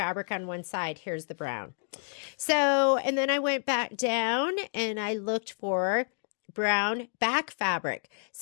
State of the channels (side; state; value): right; silent; digital silence